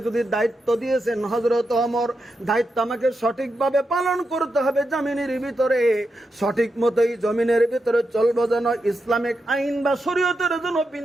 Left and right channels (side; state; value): both; normal; correlation 0.86